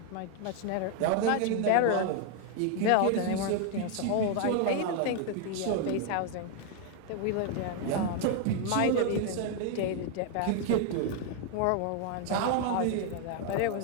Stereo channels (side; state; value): both; different; correlation 0.00